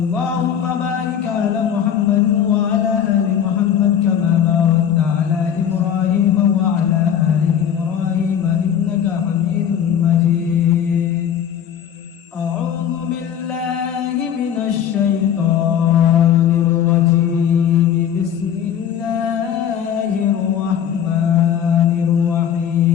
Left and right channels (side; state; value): right; quieter; 9.0 dB